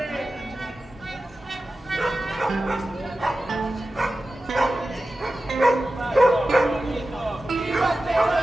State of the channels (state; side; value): normal; both; correlation 0.94